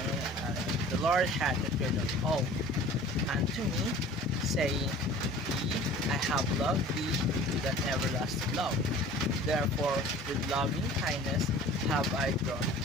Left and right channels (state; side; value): normal; both; correlation 0.45